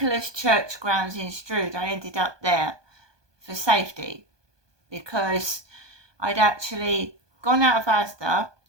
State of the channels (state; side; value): late; left; 1.2 ms